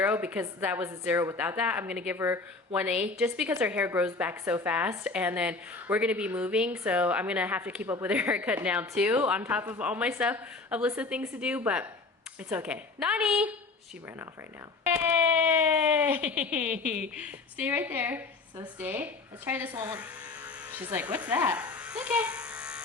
because that was a 0 without that. I'm gonna give her 1/8 just because her hair grows back so fast, and then we're gonna be moving, so I'm gonna have to keep up with her haircut now too, on top of all my stuff, a list of things to do, but it's okay. Nani! She ran off right now. Hey! Stay right there. So stay. Let's try this one. She's like, what's that? Okay.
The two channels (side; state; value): right; quieter; 3.8 dB